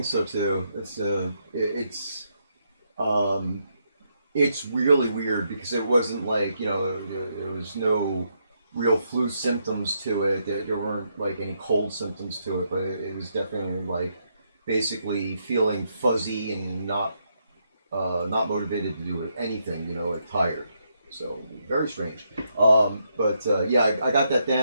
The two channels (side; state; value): both; inverted; correlation -0.78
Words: so too. It's really weird because it wasn't like there was no real flu symptoms to it. There weren't like any cold symptoms to it, but it was definitely like basically feeling fuzzy and not motivated to do anything. Like tired. So very strange. Yeah, I got that